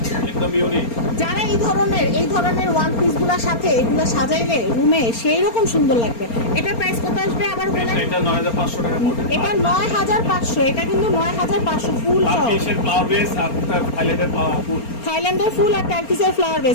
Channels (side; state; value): right; late; 4.3 ms